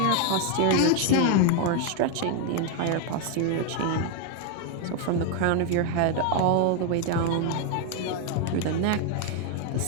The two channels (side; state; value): both; different; correlation 0.01